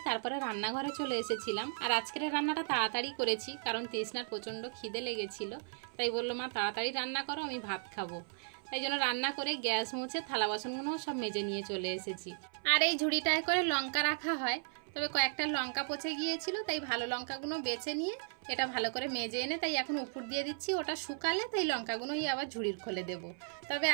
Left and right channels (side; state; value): left; silent; 54 dB below the other